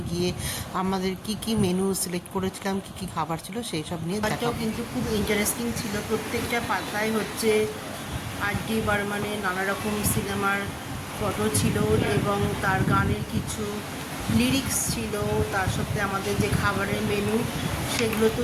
গিয়ে আমাদের কি কি মেনু সিলেক্ট করেছিলাম, কি কি খাবার ছিল সেই সব নিয়ে দেখাবো। কিন্তু খুব ইন্টারেস্টিং ছিল, প্রত্যেকটা পাতায় হচ্ছে আর.ডি. বর্মনের নানা রকম সিনেমার ফটো ছিল এবং তার গানের কিছু লিরিক্স ছিল, তার সাথে আমাদের যে খাবারের মেনু সেগুলো তো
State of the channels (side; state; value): both; identical; correlation 1.00